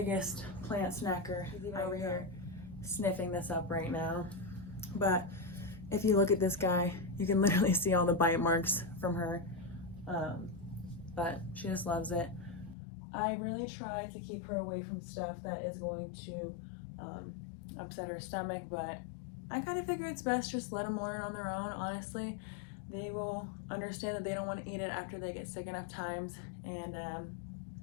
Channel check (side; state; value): right; drops out; at 12.8 s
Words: plant snacker. She's even over here sniffing this up right now. But if you look at this guy, you can literally see all the bite marks from her. But she just loves it. I really try to keep her away from stuff that is going to upset her stomach, but I kind of figure it's best just let them learn on their own. Honestly, they will understand that they don't want to eat it after they get sick enough times, and